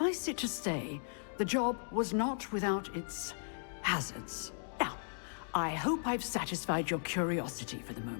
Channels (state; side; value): silent; right; digital silence